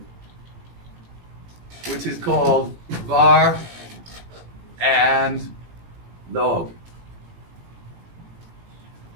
which is called var and log.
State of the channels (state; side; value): late; left; 18 ms